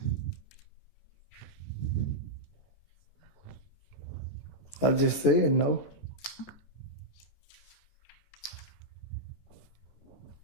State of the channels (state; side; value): late; right; 16 ms